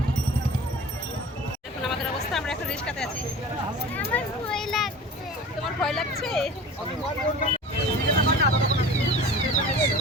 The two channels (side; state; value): both; normal; correlation 0.39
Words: দেখুন আমাদের অবস্থা, আমরা এখন রিস্কাতে আছি। আমার ভয় লাগছে। তোমার ভয় লাগছে?